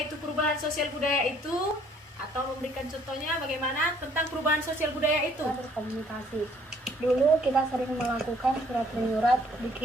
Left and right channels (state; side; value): normal; both; correlation 0.61